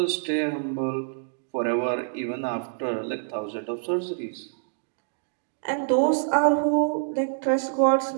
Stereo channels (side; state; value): left; silent; digital silence